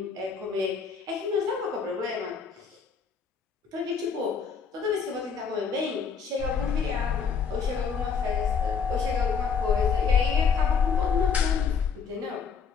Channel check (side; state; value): right; quieter; 6.1 dB